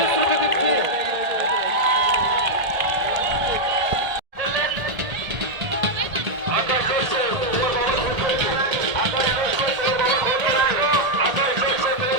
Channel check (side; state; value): left; late; 1.8 ms